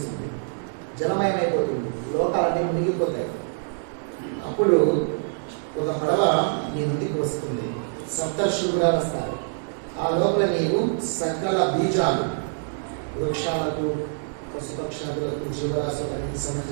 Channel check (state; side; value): silent; left; digital silence